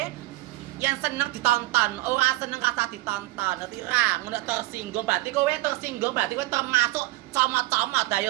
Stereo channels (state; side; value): quieter; left; 19.4 dB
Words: yang seneng ditonton, ora seneng kata ditonton, ngerti ra? Ngono tersinggung berarti kowe tersinggung berarti kowe termasuk comot-comot